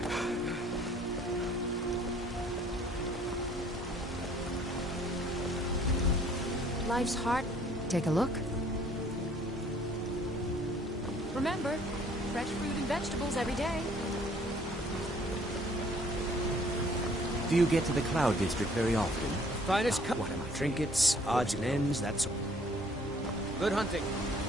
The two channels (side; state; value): both; normal; correlation 0.58